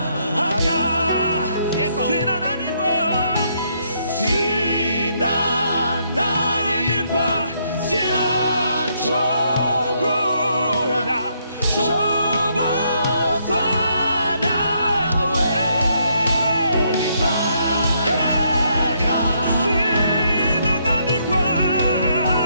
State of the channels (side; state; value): both; inverted; correlation -0.73